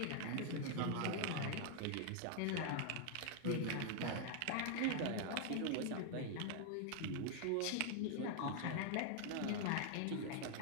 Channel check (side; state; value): both; different; correlation 0.00